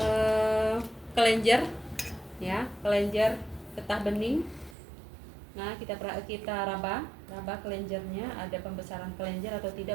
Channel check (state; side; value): drops out; left; at 4.8 s